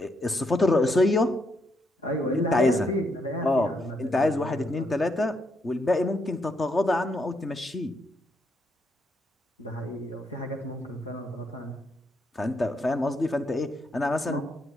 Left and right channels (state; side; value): normal; both; correlation 0.77